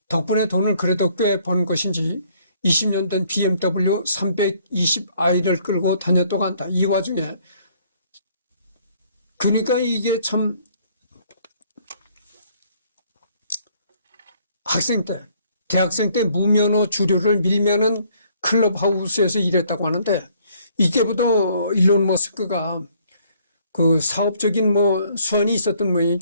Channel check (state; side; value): inverted; both; correlation -0.63